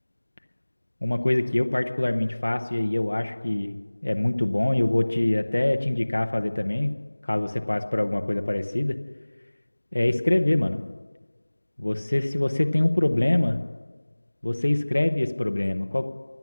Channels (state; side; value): inverted; both; correlation -1.00